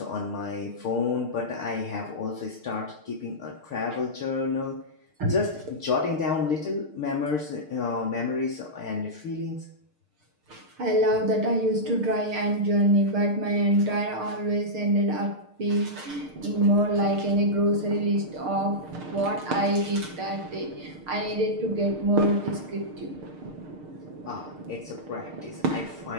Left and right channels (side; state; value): left; late; 6.6 ms